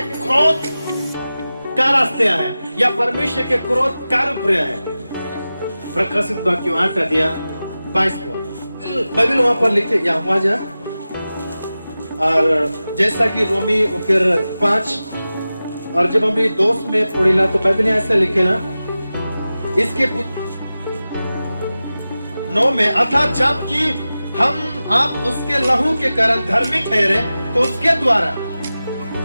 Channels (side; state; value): both; inverted; correlation -0.95